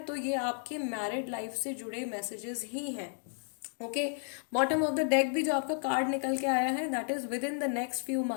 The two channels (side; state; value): right; silent; 56 dB below the other